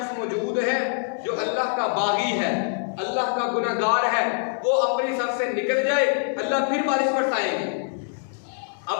मौजूद है जो अल्लाह का बागी है, अल्लाह का गुनाहगार है, वो अपनी सफ से निकल जाए, अल्लाह फिर बारिश बरसाएंगे।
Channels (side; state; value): right; silent; 62 dB below the other